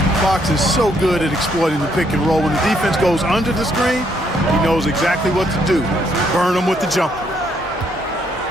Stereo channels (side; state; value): both; normal; correlation 0.71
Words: Fox is so good at exploiting the pick and roll. When the defense goes under the screen, he knows exactly what to do. Burn them with the jumper.